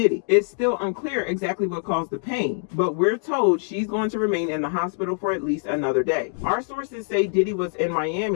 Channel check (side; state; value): right; silent; digital silence